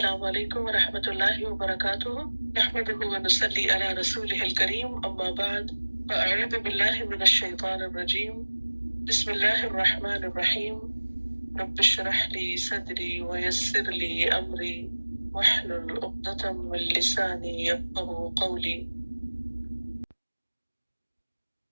علیکم ورحمۃ اللہ وبرکاتہ نحمده ونصلی علی رسوله الکریم اما بعد فاعوذ باللہ من الشیطان الرجیم بسم اللہ الرحمن الرحیم رب اشرح لی صدری ویسر لی امری واحلل عقدۃ من لسانی یفقهوا قولی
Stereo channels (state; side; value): inverted; both; correlation -1.00